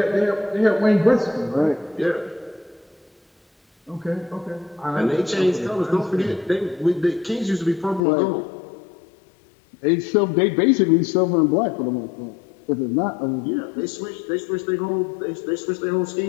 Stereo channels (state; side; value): drops out; right; at 8.0 s